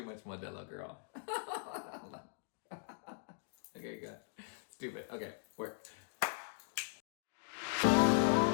much Modelo, girl. Okay, good. Stupid. Okay, work.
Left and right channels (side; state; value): right; silent; digital silence